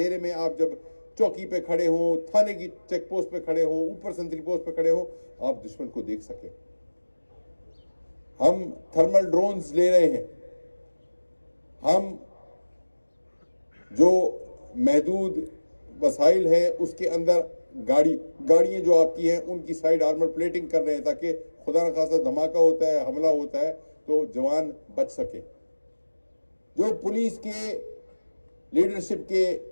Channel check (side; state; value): both; inverted; correlation -1.00